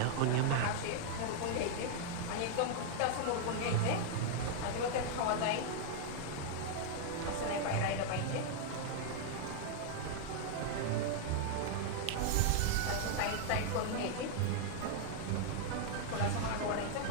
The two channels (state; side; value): different; both; correlation 0.00